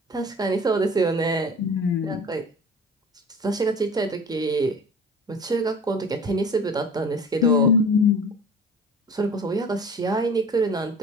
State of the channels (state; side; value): normal; both; correlation 0.41